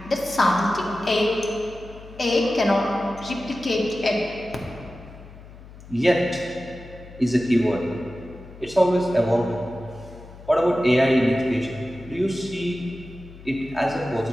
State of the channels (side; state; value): left; noise; hum, 18 dB below the sound